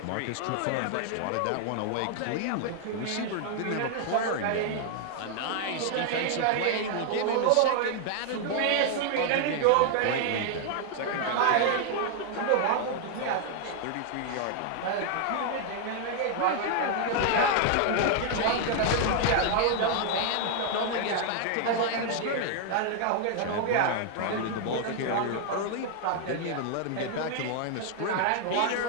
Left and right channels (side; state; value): both; different; correlation 0.00